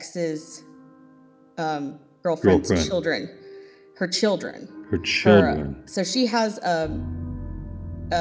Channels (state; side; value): identical; both; correlation 1.00